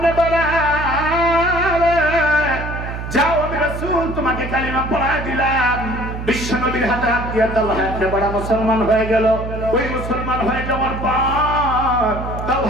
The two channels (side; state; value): right; noise; hum, 7 dB below the sound